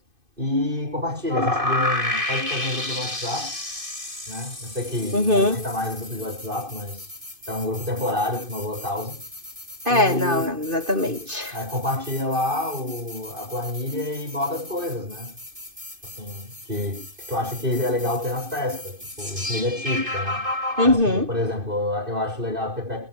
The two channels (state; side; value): late; left; 2.5 ms